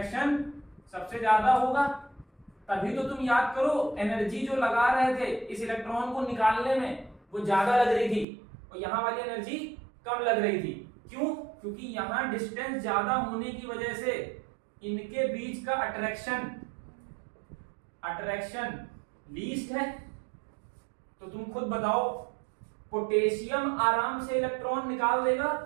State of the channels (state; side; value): drops out; left; at 8.2 s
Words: सबसे ज्यादा होगा। तभी तो तुम याद करो, एनर्जी जो लगा रहे थे इस इलेक्ट्रॉन को निकालने में वो ज्यादा लग रही थी और यहां वाली एनर्जी कम लग रही थी। क्यों? क्योंकि यहां डिस्टेंस ज्यादा होने की वजह से इनके बीच का अट्रैक्शन लीस्ट है। तो तुम खुद बताओ, पोटेशियम आराम से इलेक्ट्रॉन निकाल देगा